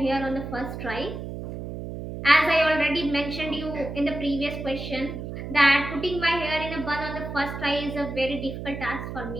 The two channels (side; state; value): right; noise; hum, 7 dB below the sound